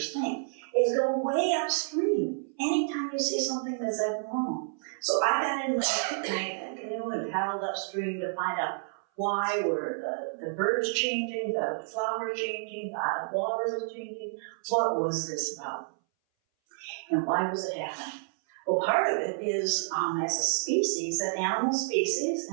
think, is go way upstream anytime you see something that's abnormal. So I got in my canoe and paddled upstream to find out why were the birds changing, the flowers changing, the water was changing. What was this about? And why was it happening? Well, part of it is, as a species, an animal species,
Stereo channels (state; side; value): silent; left; 58 dB below the other